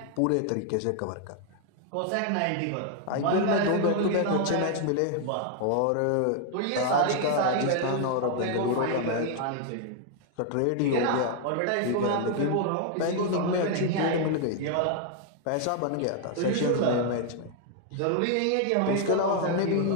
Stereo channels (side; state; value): both; different; correlation 0.00